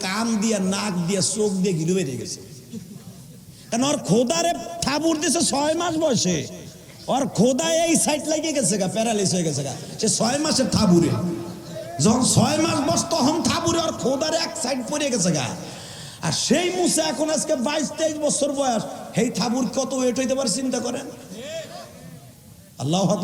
কান দিয়া, নাক দিয়া, চোখ দিয়ে গিলু বেরিয়ে গেছে। কারণ ওর খোদারে থাবুর দিছে 6 মাস বয়সে, ওর খোদা এই সাইড লাগিয়ে গেছে গা, প্যারালাইস হয়ে গেছে গা, সে 6 মাসের থাবুরে, যখন 6 মাস বয়স তখন থাবুরে ওর খোদারে এক সাইড পড়ে গেছে গা। আর সেই মুসা এখন আজকে 22-23 বছর বয়স, এই থাবুর কত ওয়েট হইতে পারে চিন্তা করেন। আল্লাহু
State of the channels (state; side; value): identical; both; correlation 1.00